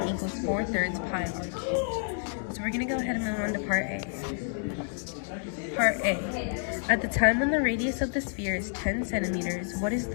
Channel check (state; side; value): silent; right; 58 dB below the other